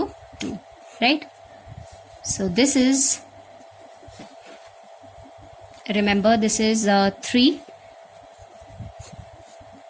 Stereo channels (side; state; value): both; identical; correlation 1.00